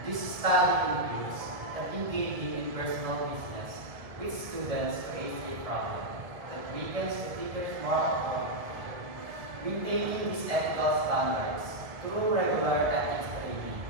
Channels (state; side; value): late; left; 1.7 ms